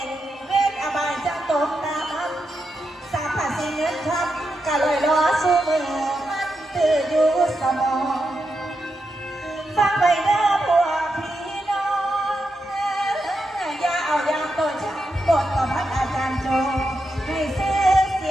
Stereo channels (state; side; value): normal; both; correlation 0.86